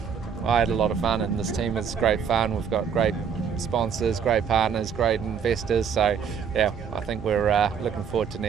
I had a lot of fun, and this team is great fun. We've got great sponsors, great partners, great investors. So I think we're looking forward to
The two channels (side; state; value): left; quieter; 7.1 dB